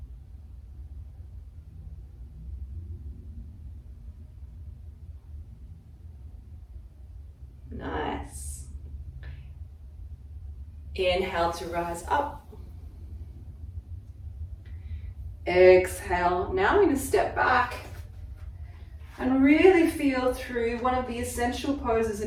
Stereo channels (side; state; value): both; identical; correlation 1.00